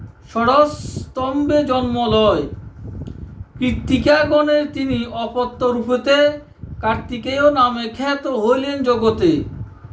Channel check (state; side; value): identical; both; correlation 1.00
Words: ষড়স্তম্ভে জন্ম লয়। কৃত্তিকাগণের তিনি অপত্য রূপেতে কার্তিকেয় নামে খ্যাত হইলেন জগতে।